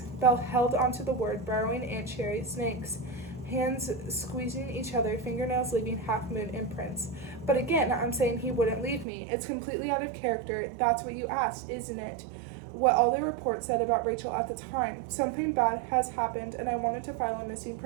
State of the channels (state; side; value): drops out; left; at 9.1 s